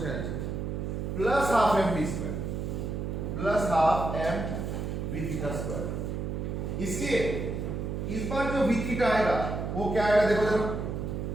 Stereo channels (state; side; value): noise; right; hum, 3 dB below the sound